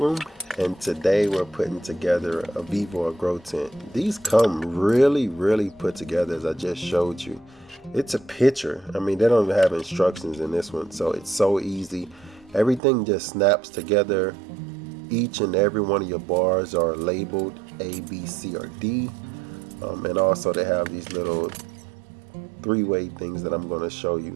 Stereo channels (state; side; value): drops out; left; at 12.8 s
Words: and today we're putting together a Vevor grow tent. These come really put together as I just showed you. It's a picture. I mean, they don't even have instructions in this one, so it's so easy. Everything just snaps together. Each and every one of your bars are labeled A, B, C, or D. And also they have these little three-way things that I'm going to show